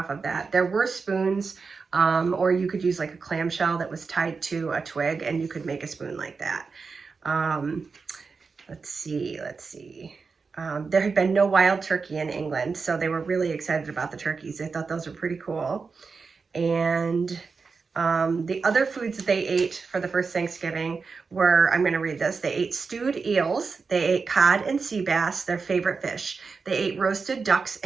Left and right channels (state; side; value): quieter; left; 4.8 dB